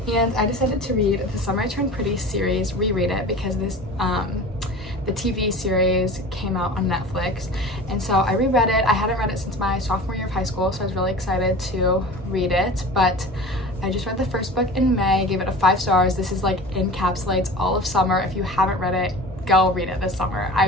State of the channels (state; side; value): normal; both; correlation 0.36